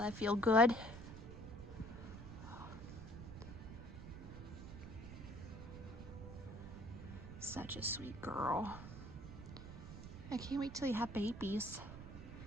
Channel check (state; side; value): noise; right; rumble, 11 dB below the sound